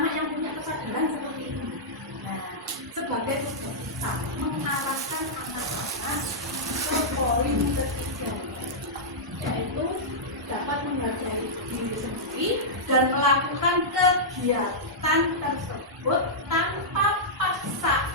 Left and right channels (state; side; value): normal; both; correlation -0.11